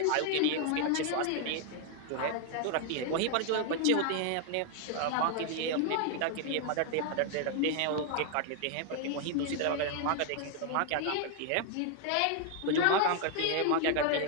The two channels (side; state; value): both; different; correlation 0.00